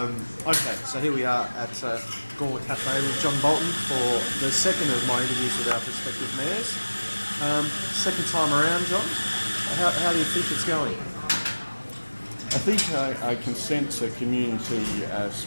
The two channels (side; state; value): both; inverted; correlation -1.00